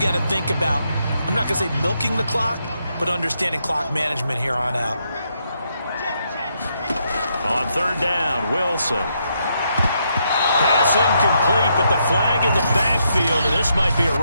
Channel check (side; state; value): both; inverted; correlation -0.78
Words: to think about, I'm not going to say milking the clock, but understanding clock management here on out. On 3rd down, Wilson. Pass incomplete, but the flag in the backfield, and this might be a